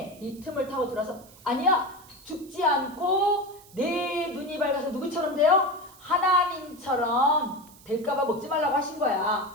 타고 들어서 아니야. 죽지 않고 내 눈이 밝아서 누구처럼 돼요? 하나님처럼 될까봐 먹지 말라고 하신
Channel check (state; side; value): noise; right; hiss, 23 dB below the sound